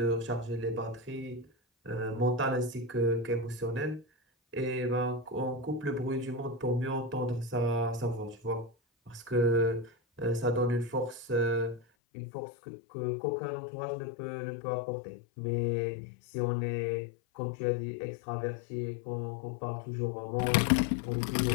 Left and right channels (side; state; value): right; drops out; at 11.8 s